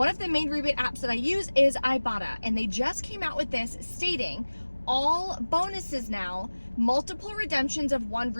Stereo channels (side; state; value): both; inverted; correlation -1.00